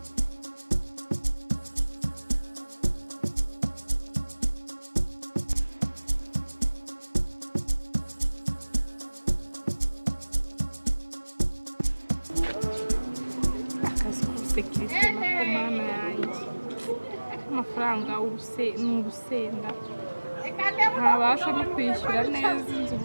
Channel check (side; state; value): both; inverted; correlation -1.00